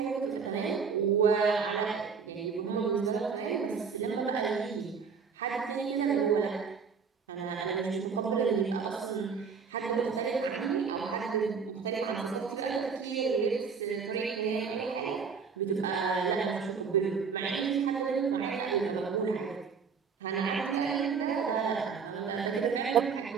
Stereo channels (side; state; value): left; quieter; 5.8 dB